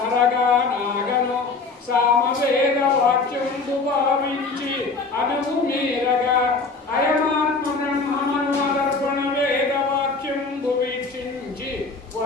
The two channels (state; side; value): quieter; right; 4.0 dB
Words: సామవేదవాక్యం భావించి అనువు మీరగా అయమాత్మ బ్రహ్మమనుదర్పణ వేదవాక్యం వీక్షించి